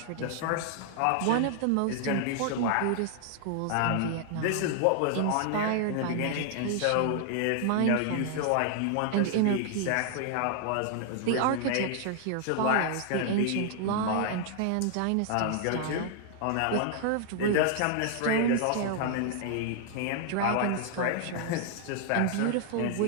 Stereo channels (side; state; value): both; different; correlation 0.00